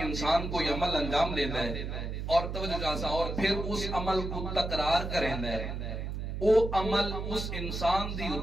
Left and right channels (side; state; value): right; noise; hum, 4 dB below the sound